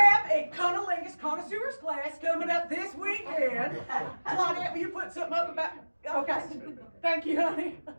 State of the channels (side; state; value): both; inverted; correlation -1.00